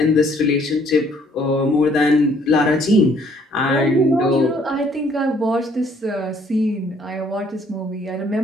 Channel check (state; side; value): normal; both; correlation 0.63